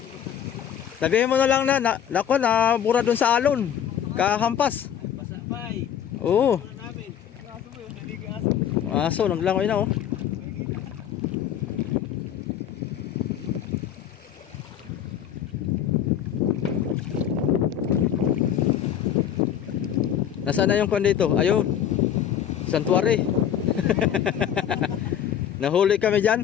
Sabihin mo na lang nako na bura dun sa alon. Kahampas. Basa pa eh. Oo. Wala namin. Aso mo yun, naligi aso. Aso, naglangoy na oh. Nasaan na yung kwan dito? Ayun. Santuary. Nahuli kami dyan.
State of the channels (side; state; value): right; quieter; 9.5 dB